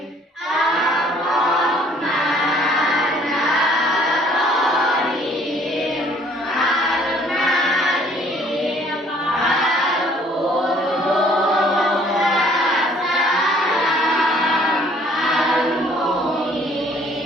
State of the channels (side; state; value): both; normal; correlation 0.59